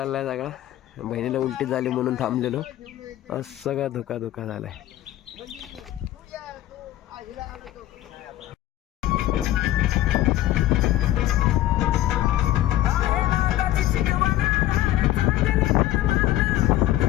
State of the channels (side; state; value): right; quieter; 14.3 dB